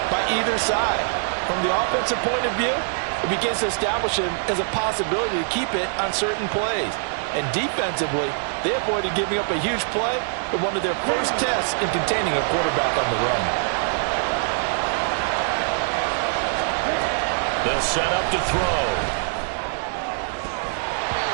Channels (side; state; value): left; silent; digital silence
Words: by either side. From the offensive point of view, it begins to establish him as a possibility to keep it on certain plays. And defensively, they avoided giving up a huge play in one of their first tests in containing a quarterback on the run. They'll set up to throw.